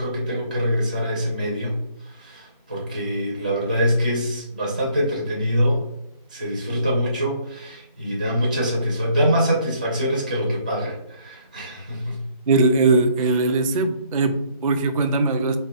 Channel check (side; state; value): both; inverted; correlation -0.64